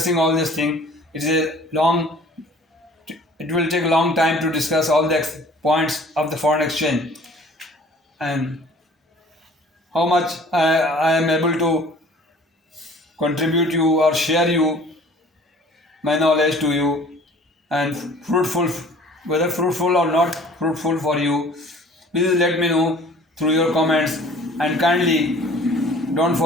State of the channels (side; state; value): both; normal; correlation 0.50